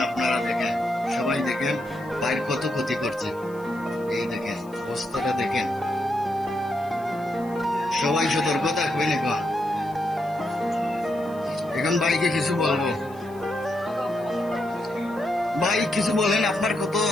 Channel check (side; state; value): left; noise; hiss, 26 dB below the sound